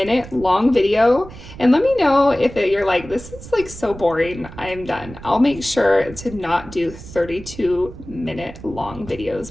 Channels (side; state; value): right; noise; rumble, 15 dB below the sound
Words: long video, and let me know if you're like, this is like so boring, I'm done. I'll make sure to not do 32-minute long